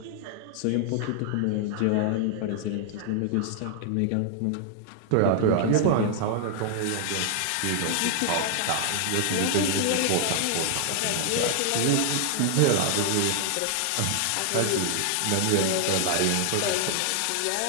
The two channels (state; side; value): different; both; correlation 0.00